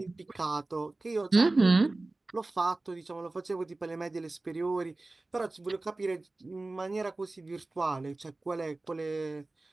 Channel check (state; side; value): quieter; left; 3.1 dB